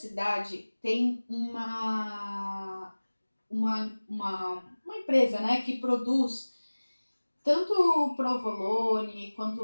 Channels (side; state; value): both; inverted; correlation -1.00